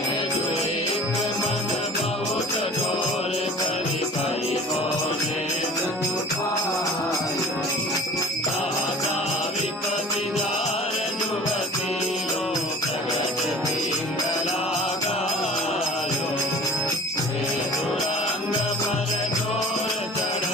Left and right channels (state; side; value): normal; both; correlation 0.44